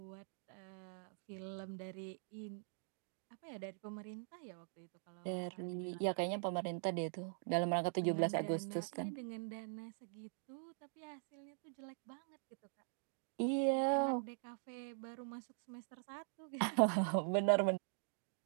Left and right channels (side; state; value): left; silent; digital silence